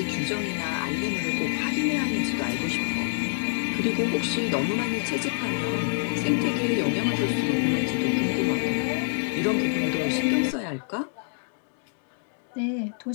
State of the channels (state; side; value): silent; right; 61 dB below the other